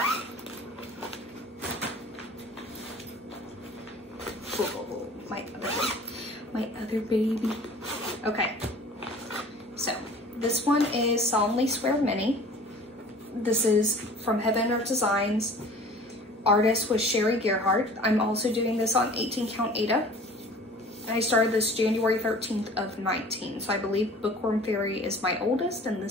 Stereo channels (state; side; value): normal; both; correlation 0.45